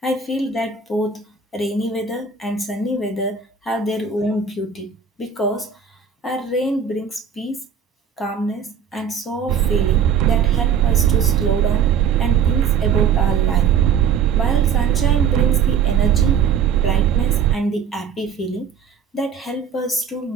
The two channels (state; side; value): quieter; left; 7.0 dB